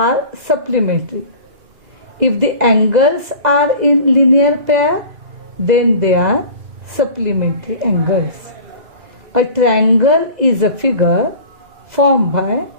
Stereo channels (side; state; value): left; late; 2.0 ms